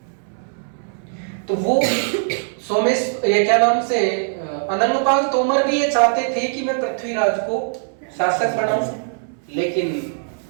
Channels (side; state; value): left; silent; 65 dB below the other